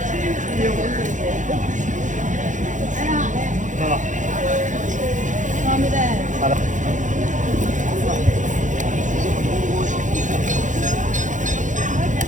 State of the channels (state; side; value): late; left; 0.36 ms